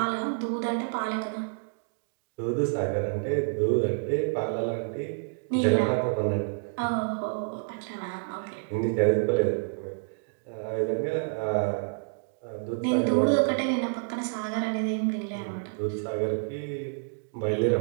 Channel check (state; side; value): silent; left; digital silence